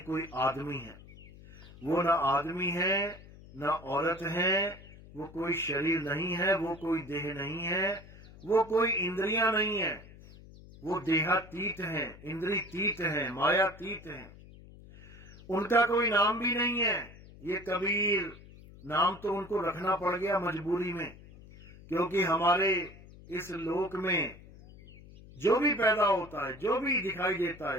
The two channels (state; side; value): noise; left; hum, 20 dB below the sound